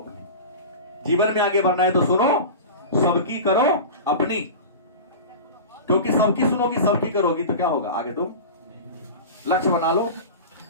जीवन में आगे बढ़ना है तो सुनो सबकी करो अपनी, क्योंकि सबकी सुनोगी सबकी करोगी तो क्या होगा, आगे तुम लक्ष्य बना लो।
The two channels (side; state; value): both; inverted; correlation -0.31